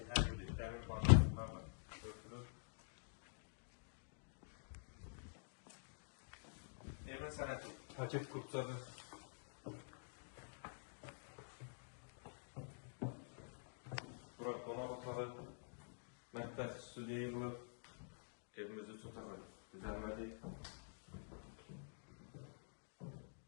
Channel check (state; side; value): silent; right; digital silence